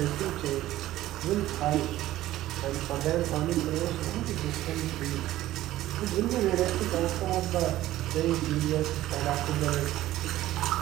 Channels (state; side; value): quieter; left; 14.9 dB